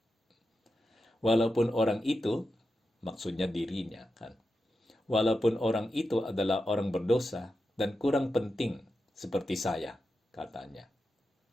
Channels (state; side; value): normal; both; correlation 0.89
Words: Walaupun orang itu, maksudnya dirinya kan, walaupun orang itu adalah orang berdosa dan kurang penting seperti saya, katanya.